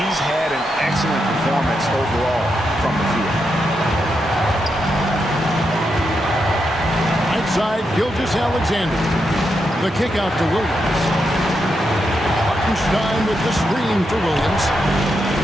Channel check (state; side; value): normal; both; correlation 0.84